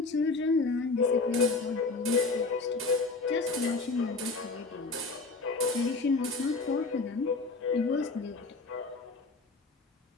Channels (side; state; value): right; quieter; 3.8 dB